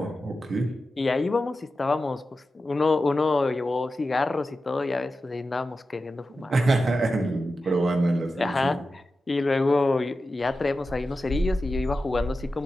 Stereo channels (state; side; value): normal; both; correlation 0.92